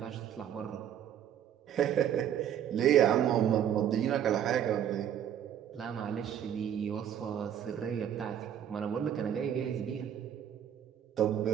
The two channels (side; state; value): left; quieter; 9.8 dB